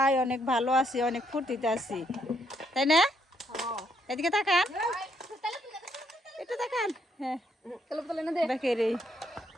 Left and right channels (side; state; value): both; normal; correlation 0.73